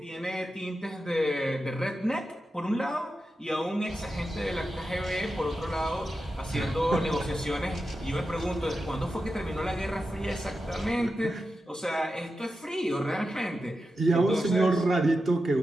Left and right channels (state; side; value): normal; both; correlation 0.90